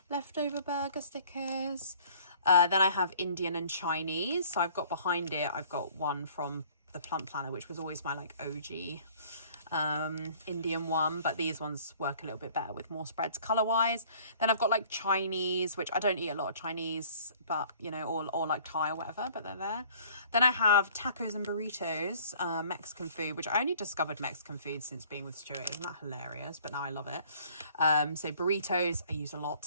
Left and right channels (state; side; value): inverted; both; correlation -0.54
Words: leftover burger stickers. Then I have Indian and Chinese. So I've got behind it, I've got one from the Plump Planner, which was always my like OG Indian one, but these ones work a little bit better with more spreads color wise. Then I've got like Chinese, which I don't eat a lot of Chinese, but you know, or like Thai or whatever, but they're there. Then I have tacos and burritos, Mexican food, which I only discovered Mexican food since being with Stuart. Isn't that hilarious? But now I love it. So burritos I use a